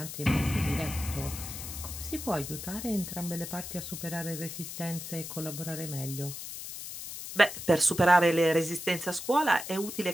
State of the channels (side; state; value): left; noise; hiss, 9 dB below the sound